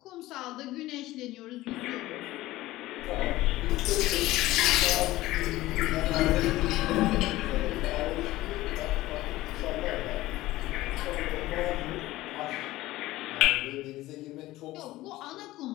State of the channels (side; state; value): right; quieter; 17.2 dB